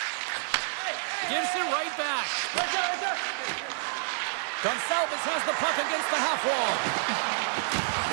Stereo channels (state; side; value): silent; left; digital silence